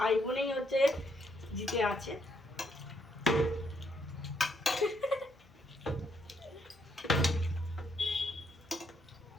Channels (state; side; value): normal; both; correlation 0.74